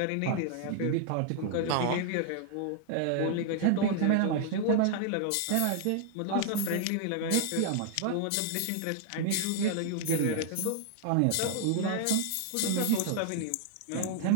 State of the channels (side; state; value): both; different; correlation 0.00